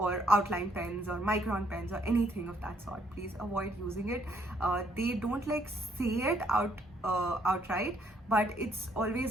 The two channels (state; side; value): normal; both; correlation 0.69